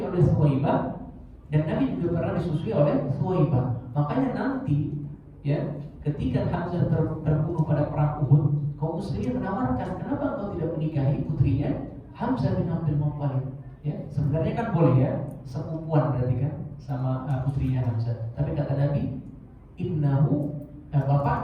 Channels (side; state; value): both; identical; correlation 1.00